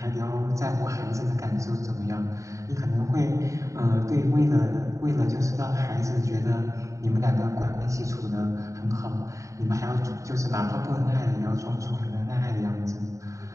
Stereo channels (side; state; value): left; late; 0.15 ms